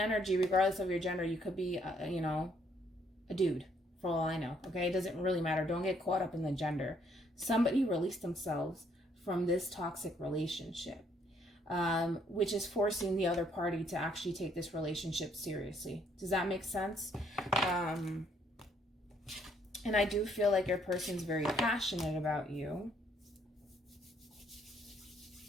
regardless of your gender, you could be, you know, a dude. For all I know, okay? It doesn't really matter. Don't get caught up in the gender. Somebody released themselves from this toxic relationship, which is forcing the other party to actually take this relationship seriously. Does that make sense? And I do feel like your person's very passionate about you.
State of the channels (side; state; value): both; normal; correlation 0.68